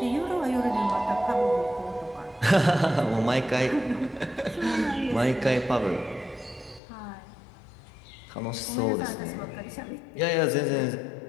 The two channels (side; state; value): right; drops out; at 6.8 s